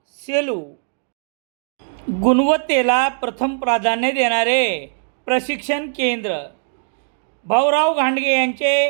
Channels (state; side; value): silent; left; digital silence